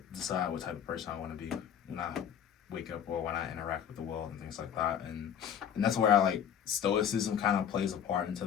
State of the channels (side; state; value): right; quieter; 8.8 dB